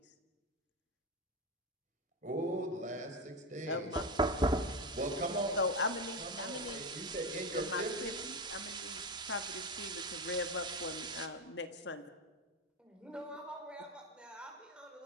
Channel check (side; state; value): both; normal; correlation 0.16